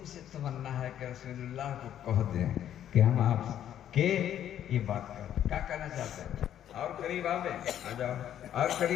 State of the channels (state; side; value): quieter; right; 10.6 dB